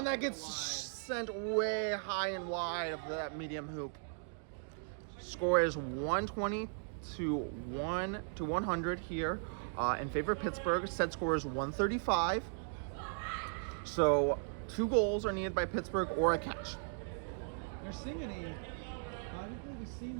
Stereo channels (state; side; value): silent; left; digital silence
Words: that gets sent way high and wide of that medium hoop. Score is 120 to 100 here in favor of Pittsburgh. Set score is 135. So 2 goals are needed by Pittsburgh or a catch. There's Singany. I don't think we've seen